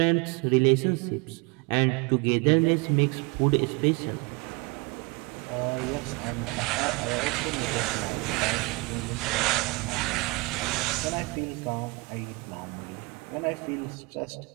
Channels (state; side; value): quieter; left; 26.2 dB